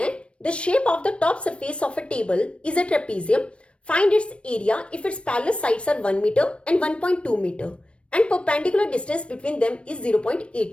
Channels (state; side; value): late; right; 0.060 ms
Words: the shape of the top surface of a table is a trapezium, find its area if its parallel sides are 1 metre and 1.2 metre and perpendicular distance between them is